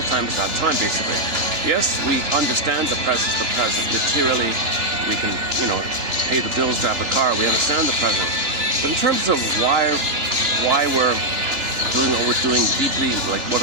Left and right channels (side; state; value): left; late; 2.9 ms